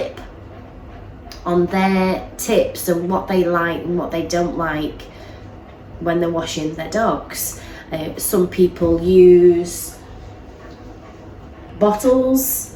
on their tips and what they like and what they don't like when they're washing their dogs. Some people use bottles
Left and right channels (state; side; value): identical; both; correlation 1.00